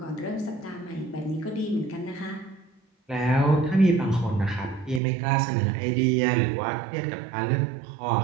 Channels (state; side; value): drops out; left; at 5.0 s